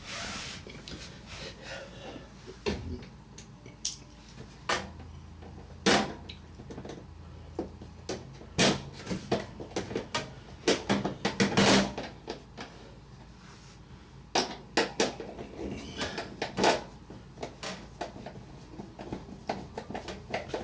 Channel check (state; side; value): identical; both; correlation 1.00